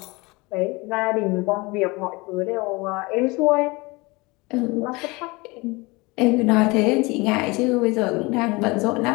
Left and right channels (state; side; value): quieter; right; 24.6 dB